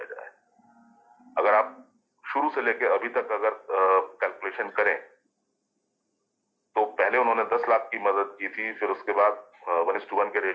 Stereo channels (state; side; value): identical; both; correlation 1.00